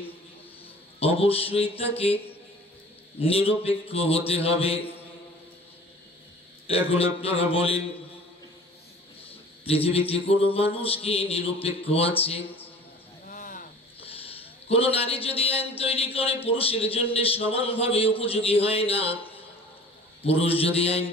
অবশ্যই তাকে নিরপেক্ষ হতে হবে। এখন আপনারা বলেন, পৃথিবীতে কোনো মানুষ কি নিরপেক্ষ আছে? কোন নারী যদি আইন তৈরি করে পুরুষের জন্য সমানভাবে উপযোগী হয় না, পুরুষ যদি আইন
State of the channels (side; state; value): both; normal; correlation 0.45